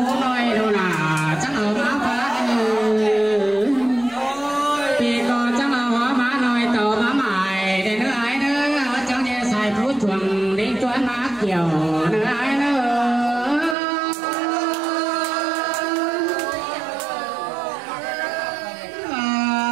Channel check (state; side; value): drops out; left; at 13.8 s